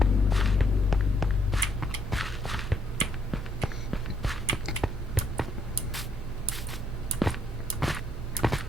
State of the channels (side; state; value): both; normal; correlation 0.71